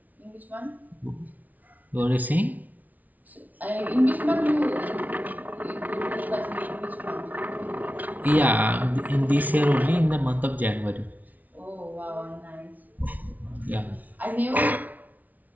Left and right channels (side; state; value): left; late; 0.076 ms